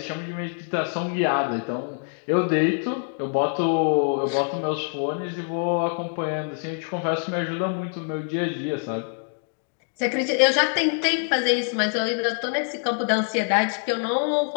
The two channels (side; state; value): right; silent; 57 dB below the other